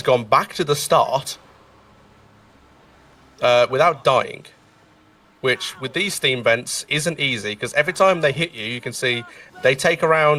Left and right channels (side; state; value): both; identical; correlation 1.00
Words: gone back to the start without dying. Which, with these steam vents, isn't easy, because every time they hit you, you can see they take